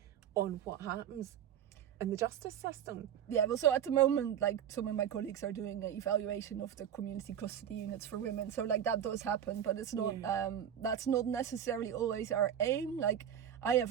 on what happens in the justice system. Yeah, well, so at the moment, like, some of my colleagues are doing an evaluation of the community custody units for women. So, like, that does happen, but it's not, that's not necessarily always our aim. Like, I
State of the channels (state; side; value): quieter; left; 9.4 dB